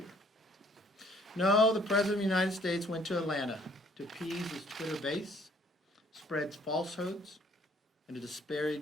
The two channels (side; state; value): both; normal; correlation 0.60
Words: No, the President of the United States went to Atlanta to appease his Twitter base, spread falsehoods, and to